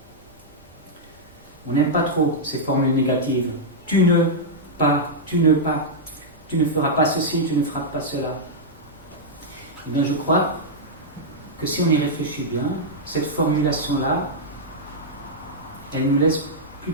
On n'aime pas trop ces formules négatives. Tu ne pas, tu ne pas, tu ne feras pas ceci, tu ne feras pas cela. Eh bien, je crois que si on y réfléchit bien, cette formulation-là, elle nous laisse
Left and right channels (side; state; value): both; normal; correlation -0.07